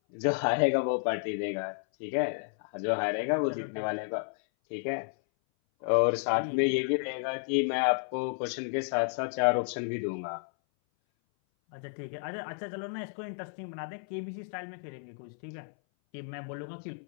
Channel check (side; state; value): right; silent; 57 dB below the other